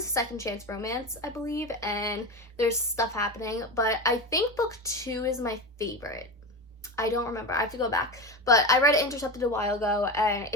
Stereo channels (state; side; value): normal; both; correlation 0.22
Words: a second chance romance, I believe, and there's stuff happening, but I think book 2 is my favorite. I don't remember. I have to go back. But I read Intercepted a while ago, and